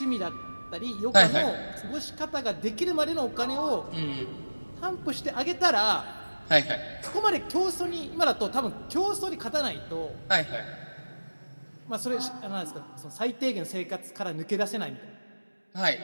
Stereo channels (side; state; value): both; inverted; correlation -1.00